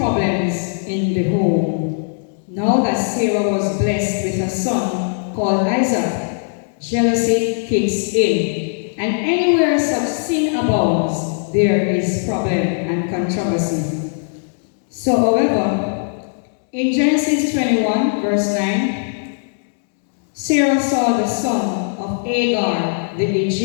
in the home. Now that Sarah was blessed with a son called Isaac, jealousy kicks in. And anywhere such sin abounds, there is problem and controversy. So, however, in Genesis 21, verse 9, Sarah saw the son of Hagar, the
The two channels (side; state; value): right; silent; digital silence